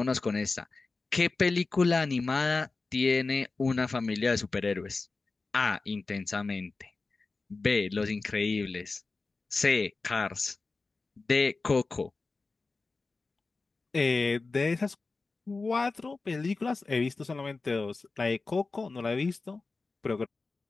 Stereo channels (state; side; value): quieter; right; 3.8 dB